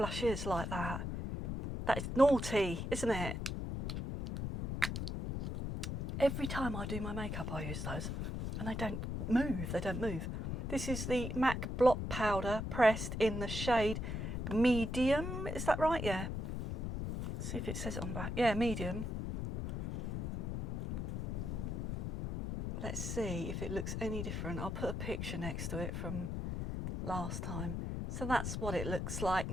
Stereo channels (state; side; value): noise; left; rumble, 3 dB below the sound